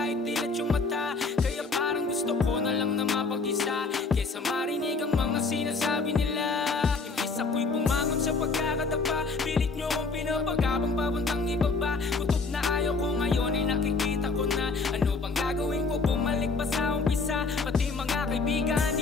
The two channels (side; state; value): right; quieter; 4.1 dB